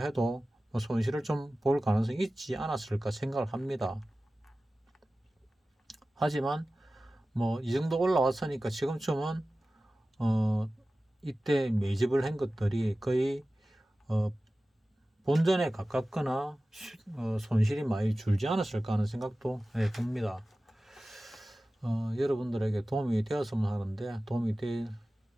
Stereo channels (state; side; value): normal; both; correlation 0.96